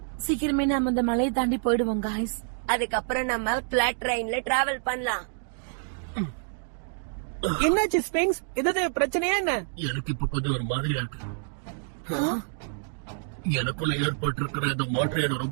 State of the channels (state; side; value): silent; left; 60 dB below the other